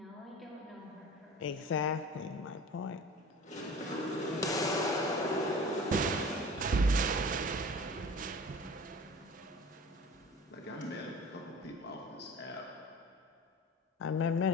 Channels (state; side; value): normal; both; correlation 0.40